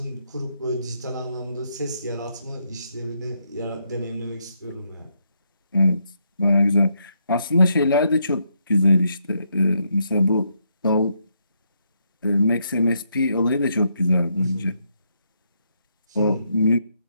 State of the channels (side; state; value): both; inverted; correlation -0.78